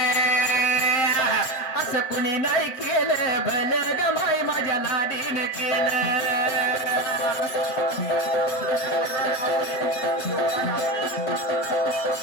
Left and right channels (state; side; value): late; right; 7.6 ms